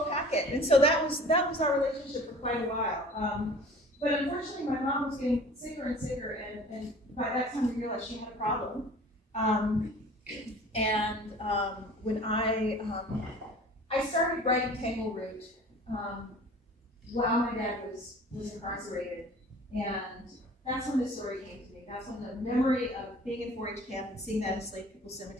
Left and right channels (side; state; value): both; normal; correlation 0.45